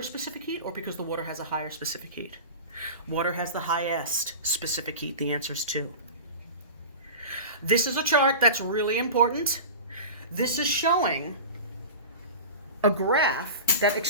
specific heat or because the water has a higher specific heat? Water has the highest specific heat. The answer is 2. This is a chart that's really important. This is showing a graph that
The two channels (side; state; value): both; inverted; correlation -0.31